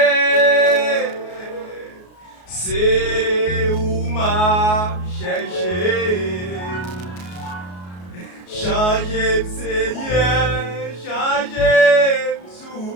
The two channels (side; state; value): right; late; 33 ms